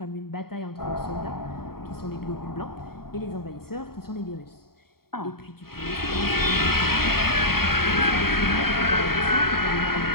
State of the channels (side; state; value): right; late; 0.94 ms